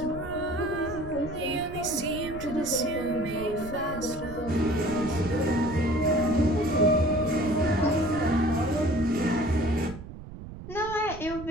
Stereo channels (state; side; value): noise; right; rumble, 13 dB below the sound